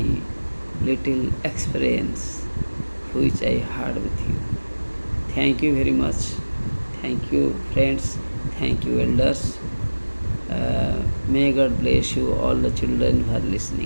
little experience which I had with you. Thank you very much. Thank you, friends. Thank you, elders. May God bless you, all the children who are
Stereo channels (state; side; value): inverted; both; correlation -1.00